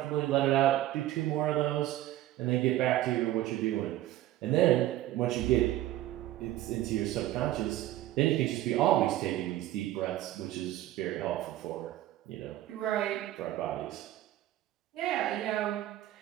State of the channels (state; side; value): quieter; left; 14.6 dB